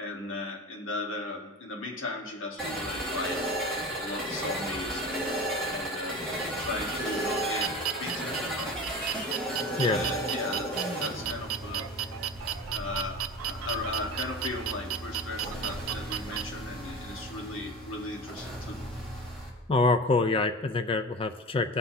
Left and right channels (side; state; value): both; normal; correlation 0.33